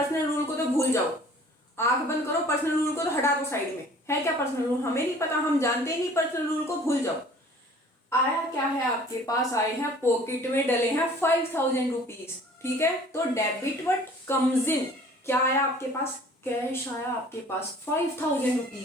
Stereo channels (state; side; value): normal; both; correlation 0.50